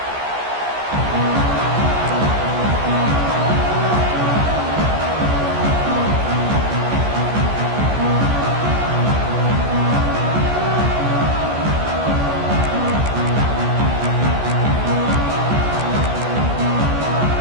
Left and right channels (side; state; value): left; late; 14 ms